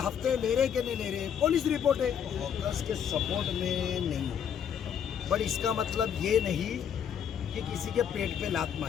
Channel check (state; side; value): quieter; right; 8.4 dB